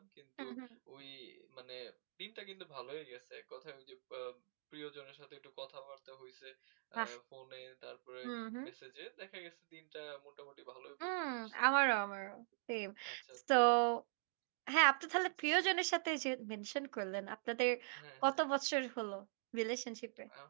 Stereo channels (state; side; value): silent; left; digital silence